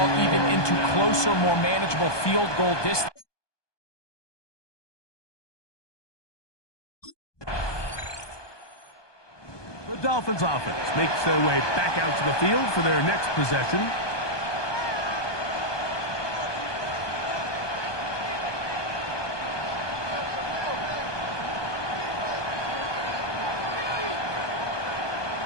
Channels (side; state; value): right; late; 1.2 ms